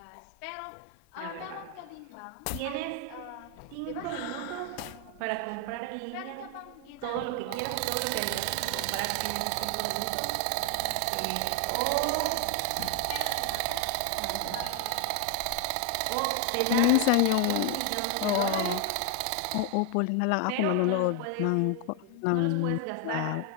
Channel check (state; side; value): different; both; correlation 0.01